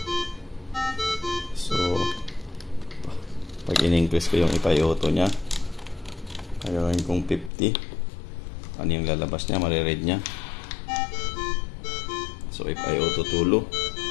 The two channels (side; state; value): right; drops out; at 7.5 s